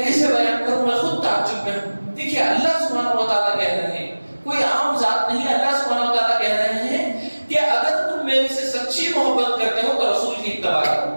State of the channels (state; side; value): inverted; both; correlation -1.00